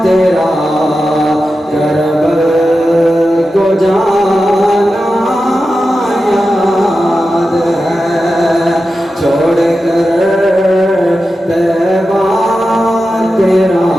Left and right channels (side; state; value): both; normal; correlation 0.92